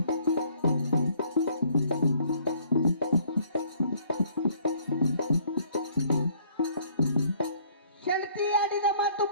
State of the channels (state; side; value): inverted; both; correlation -0.61